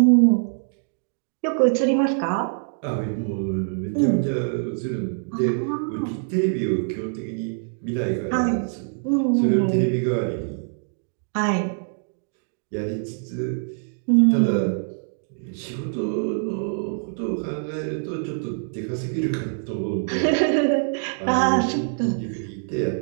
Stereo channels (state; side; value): silent; left; digital silence